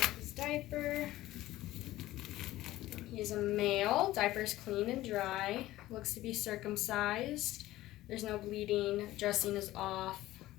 up his diaper. He is a male. Diaper's clean and dry. Looks to be circumcised. There's no bleeding. Dressing is off.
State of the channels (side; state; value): right; quieter; 16.1 dB